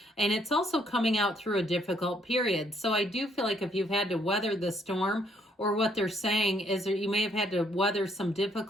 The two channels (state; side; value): normal; both; correlation 0.69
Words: And it's also coming out through a difficult period. So I do feel like if you've had to weather the storm, or what they're saying is that you may have had to weather some